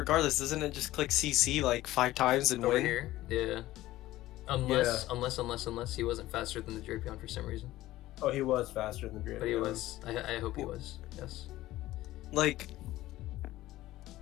doesn't it just click CC like 5 times and Over win? here, yeah. Unless he wasn't faster than the Drapion for some reason. Oh, he was faster than Drapion. But he was. I hope he was. Yes. Like.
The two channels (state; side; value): quieter; right; 16.1 dB